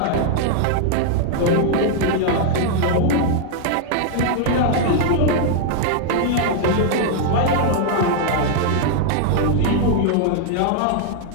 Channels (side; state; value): both; different; correlation 0.00